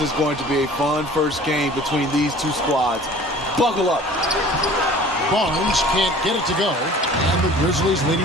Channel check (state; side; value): normal; both; correlation 0.47